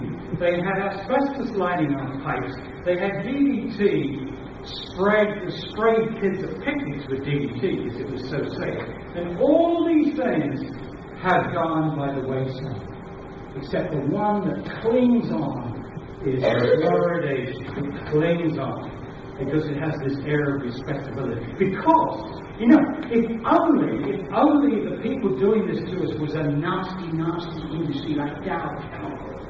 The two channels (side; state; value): both; identical; correlation 1.00